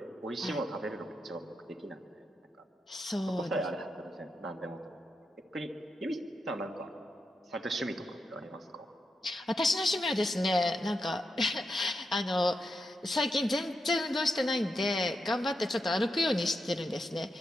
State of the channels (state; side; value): normal; both; correlation 0.86